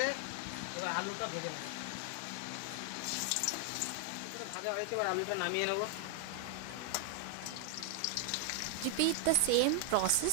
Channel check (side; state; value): both; different; correlation 0.00